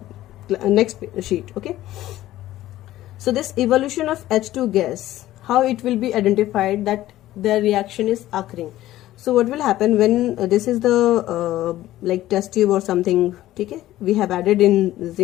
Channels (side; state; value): right; quieter; 14.7 dB